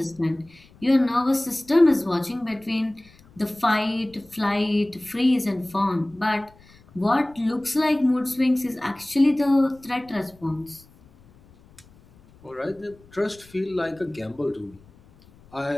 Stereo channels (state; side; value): noise; left; rumble, 27 dB below the sound